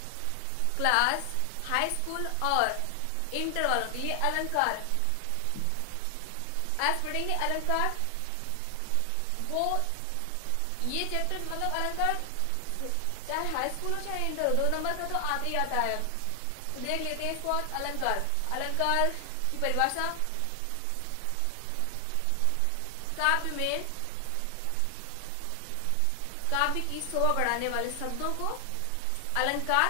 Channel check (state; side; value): different; both; correlation 0.00